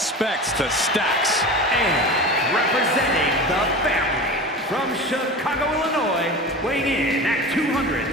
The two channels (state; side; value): normal; both; correlation 0.31